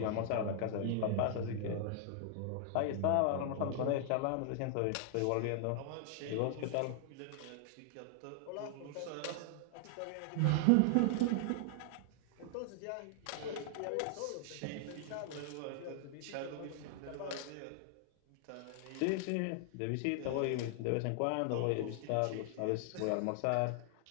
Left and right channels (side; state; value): both; different; correlation 0.00